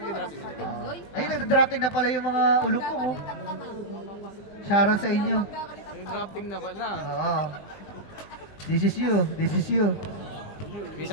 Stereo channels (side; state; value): right; late; 20 ms